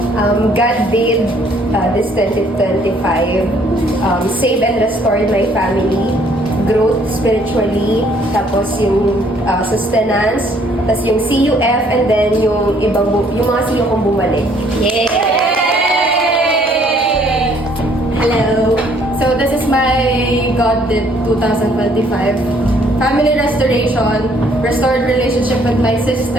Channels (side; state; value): both; normal; correlation 0.63